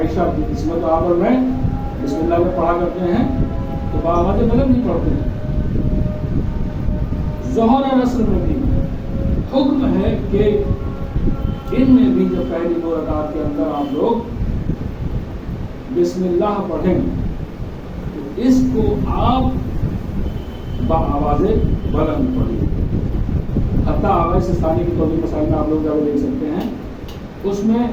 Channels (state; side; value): identical; both; correlation 1.00